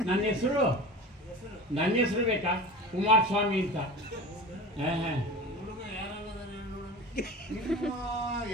ನನ್ನ ಹೆಸರು ಬೇಕಾ? ಕುಮಾರಸ್ವಾಮಿ ಅಂತ.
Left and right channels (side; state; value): both; normal; correlation 0.33